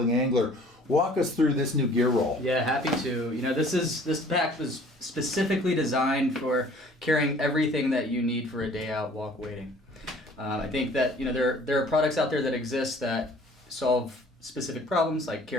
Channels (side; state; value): both; normal; correlation 0.53